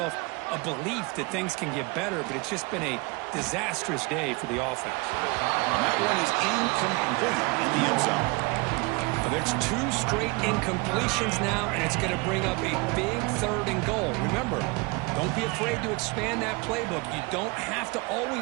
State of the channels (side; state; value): left; quieter; 27.0 dB